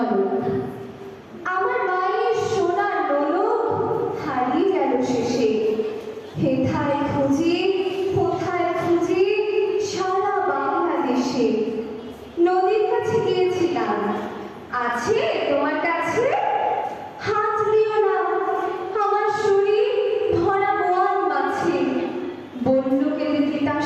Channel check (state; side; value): identical; both; correlation 1.00